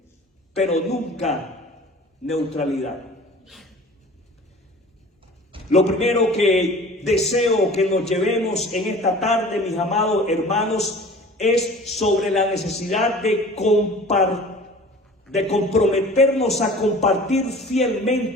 pero nunca neutralidad. Lo primero que deseo que nos llevemos en esta tarde, mis amados hermanos, es sobre la necesidad de comprometernos a compartir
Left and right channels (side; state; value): both; normal; correlation 0.43